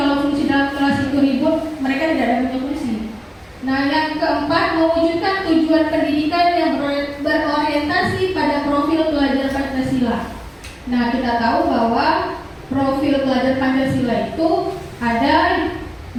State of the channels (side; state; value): both; identical; correlation 1.00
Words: fungsi dalam kelas itu ribut, mereka tidak ada punya fungsi. Nah yang keempat, mewujudkan tujuan pendidikan yang berorientasi pada profil pelajar Pancasila. Nah kita tahu bahwa profil pelajar Pancasila itu ada